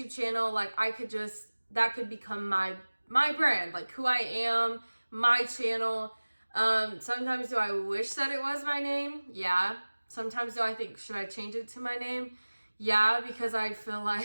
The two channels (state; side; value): inverted; both; correlation -1.00